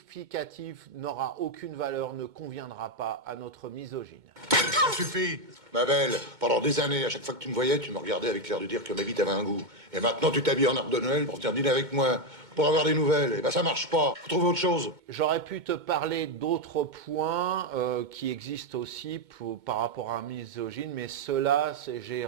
n'aura aucune valeur, ne conviendra pas à notre misogyne. Ça suffit, ma belle. Pendant des années, à chaque fois que tu me voyais, tu me regardais avec l'air de dire que ma vie t'avait un goût. Et maintenant, tu t'habilles en arbre de Noël pour venir dîner avec moi, pour avoir des nouvelles. Et ben ça marche pas. Faut trouver autre chose. J'aurais pu te parler d'autres points qui existent aussi par rapport à un misogyne, mais ceux-là, j'ai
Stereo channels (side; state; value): left; late; 2.2 ms